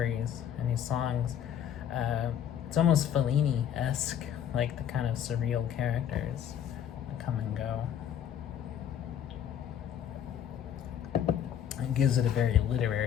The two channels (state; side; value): quieter; right; 9.5 dB